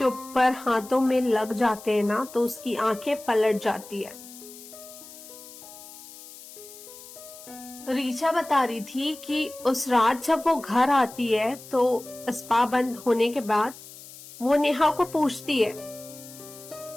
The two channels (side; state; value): left; noise; hiss, 17 dB below the sound